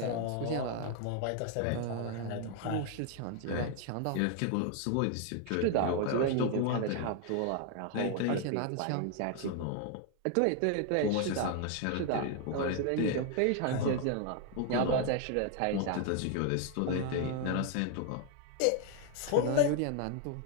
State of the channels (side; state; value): both; different; correlation 0.00